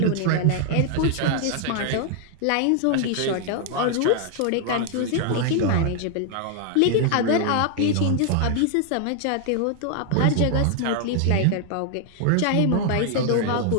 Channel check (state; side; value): different; both; correlation 0.00